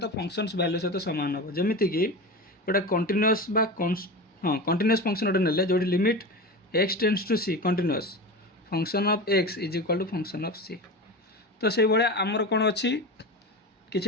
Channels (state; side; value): normal; both; correlation 0.26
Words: फंक्शंस वैल्यू सहित सामान हम, जमीती कि गोटे कंटिन्यूअस कंटिन्यूअस फंक्शन गोटे नेले जो limit x tends to c continuous function of x is equal to function of c. तो से भाया आमर कौन अच्छी